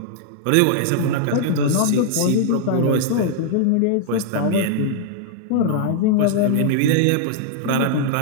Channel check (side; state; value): both; different; correlation -0.01